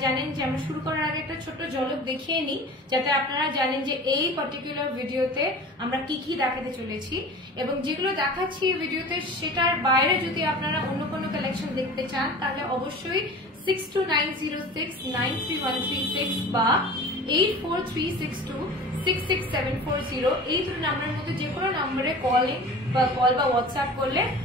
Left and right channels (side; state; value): both; normal; correlation 0.38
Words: জানেন যে আমরা শুরু করার আগে একটা ছোট্ট ঝলক দেখিয়ে নিই, যাতে আপনারা জানেন যে এই পার্টিকুলার ভিডিওতে আমরা কি কি দেখাতে চলেছি, এবং যেগুলো দেখাচ্ছি ভিডিওতে সেটার বাইরে যদি আপনারা অন্য কোনো কালেকশন দেখতে চান তাহলে অবশ্যই 6290693136 বা 8436266740 এই দুটো নাম্বারের মধ্যে যে কোনো নাম্বারে কল বা হোয়াটসঅ্যাপ করলে